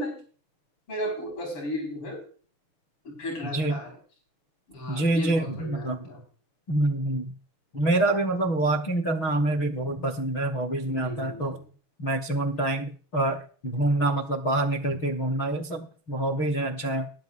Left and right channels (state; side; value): late; right; 6.4 ms